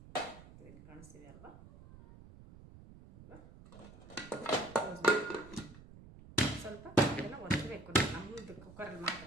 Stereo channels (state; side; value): noise; right; rumble, 18 dB below the sound